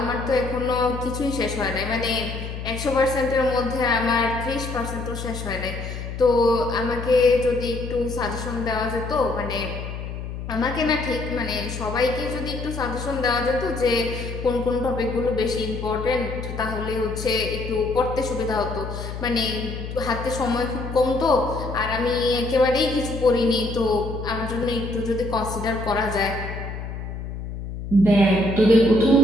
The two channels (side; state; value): left; noise; hum, 7 dB below the sound